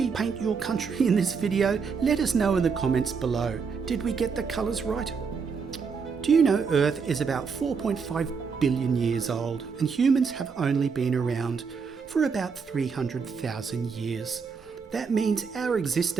paint your country in this video, let us know in the comments below. Did we get the colours right? Do you know Earth is about 4.5 billion years old and humans have only been around for about 300,000 years. That means our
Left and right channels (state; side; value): quieter; left; 5.6 dB